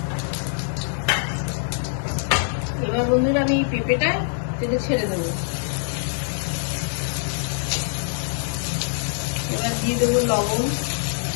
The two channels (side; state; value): right; silent; 63 dB below the other